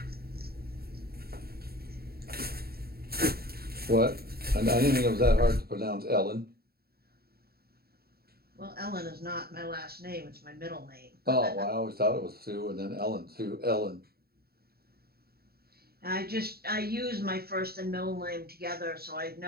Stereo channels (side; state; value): left; late; 0.45 ms